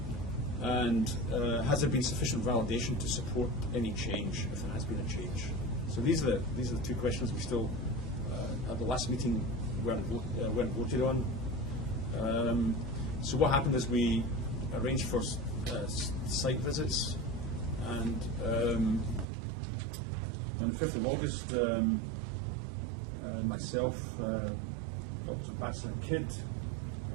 And has there been sufficient validation to support any change, if there has been a change? So these are the 2 questions we still, at the last meeting, weren't voted on. So what happened is we arranged for site visits, and on the 5th of August, myself, Dr. Batzer and Kidd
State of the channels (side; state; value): left; drops out; at 19.2 s